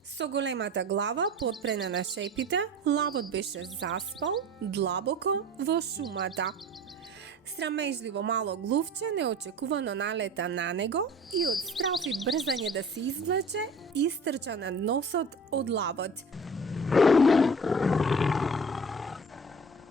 Со големата глава потпрена на шепите, лавот беше заспал длабоко во шумата. Срамежливо мало глувче неочекувано налета на него и од страф и брзање да се извлече, истрча на носот од лавот.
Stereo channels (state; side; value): normal; both; correlation 0.41